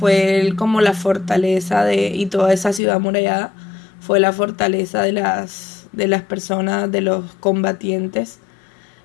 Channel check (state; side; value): drops out; right; at 2.8 s